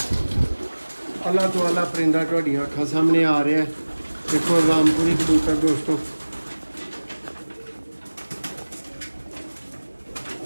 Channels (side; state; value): both; inverted; correlation -1.00